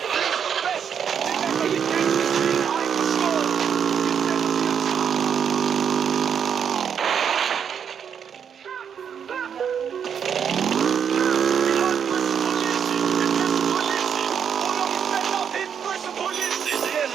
er bedst. Det lander de ganske svin, har ikke forstået.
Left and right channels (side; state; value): left; quieter; 7.8 dB